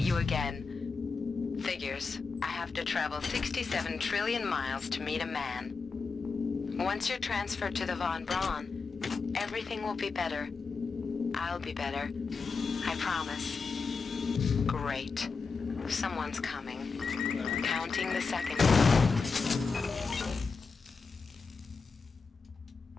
you again. Figures. I have to travel 67 trillion miles to meet a man. Once you're transferred to the Von Braun, everything will be better. I'll be better. I promise. Great. Someone's coming. Counting the seconds.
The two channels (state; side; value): quieter; right; 4.8 dB